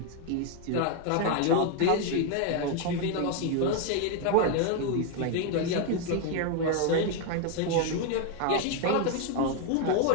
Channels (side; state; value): both; different; correlation 0.01